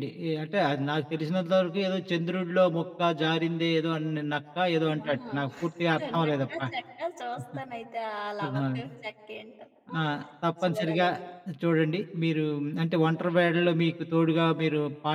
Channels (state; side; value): identical; both; correlation 1.00